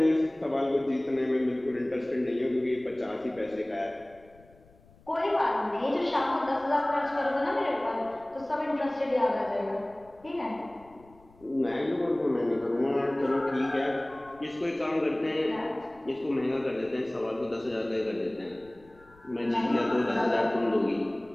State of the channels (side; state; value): left; noise; rumble, 27 dB below the sound